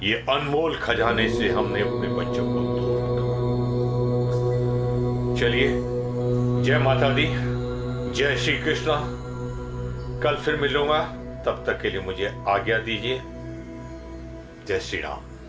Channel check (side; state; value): both; identical; correlation 1.00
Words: ये अनमोल खजाने से हमने अपने बच्चों को दूर रखा। चलिए, जय माता दी, जय श्री कृष्णा। कल फिर मिलूंगा, तब तक के लिए मुझे आज्ञा दीजिए। जय श्री राम।